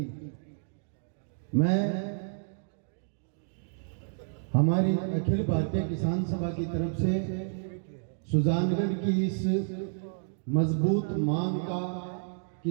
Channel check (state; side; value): silent; left; digital silence